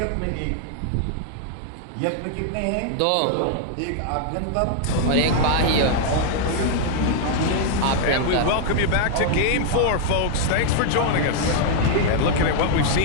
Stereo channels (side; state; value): both; different; correlation -0.01